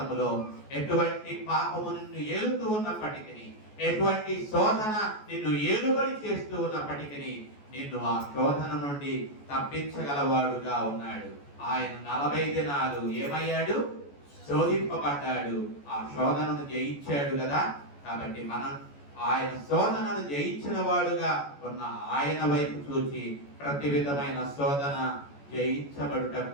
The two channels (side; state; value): right; late; 14 ms